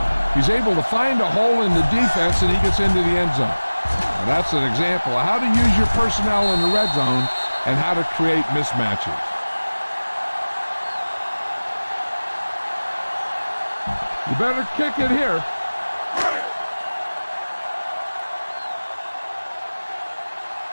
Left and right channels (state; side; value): inverted; both; correlation -1.00